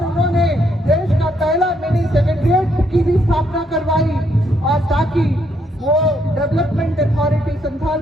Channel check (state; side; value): normal; both; correlation 0.73